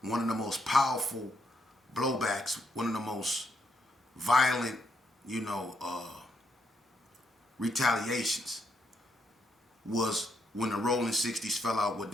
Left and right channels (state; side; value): normal; both; correlation 0.77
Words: One of the most powerful blowbacks, one of the most violent, you know, retaliations was when the Rolling 60s fell out with